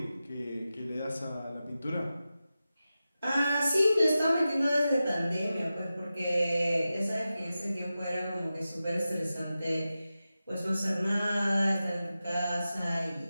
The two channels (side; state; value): both; inverted; correlation -0.93